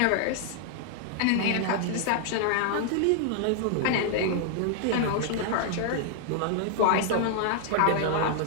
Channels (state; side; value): different; both; correlation 0.00